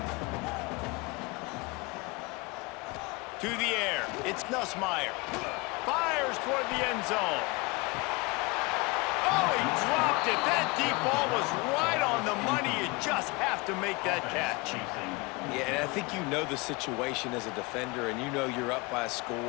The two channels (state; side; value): quieter; right; 26.2 dB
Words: To the air, it's Nussmeier. Fires toward the end zone. Oh, he dropped it. That deep ball was right on the money. You just have to make that catch. Yeah, and I think you know the situation as a defender, and you know you're up by a